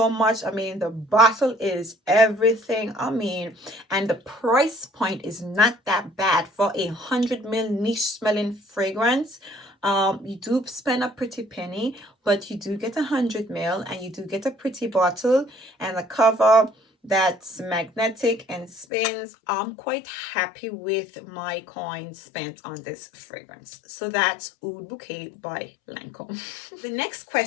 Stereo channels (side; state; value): right; drops out; at 18.9 s